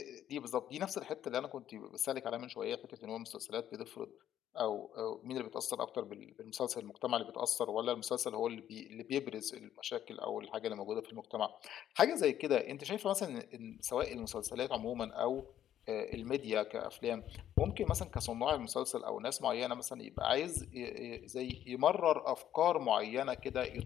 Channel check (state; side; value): quieter; right; 11.0 dB